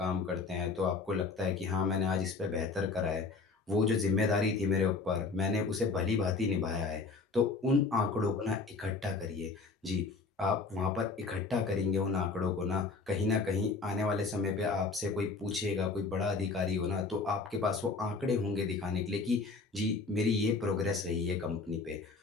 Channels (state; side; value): quieter; right; 4.1 dB